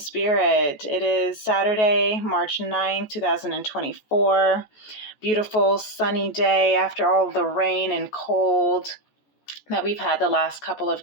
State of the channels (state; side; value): late; right; 14 ms